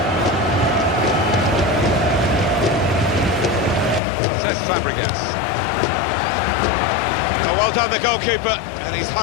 Says Fabregas. Oh, well done, the goalkeeper, and he's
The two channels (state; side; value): drops out; right; at 4.0 s